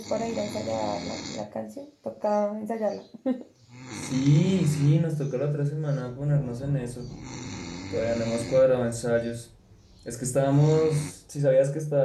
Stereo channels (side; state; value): both; identical; correlation 1.00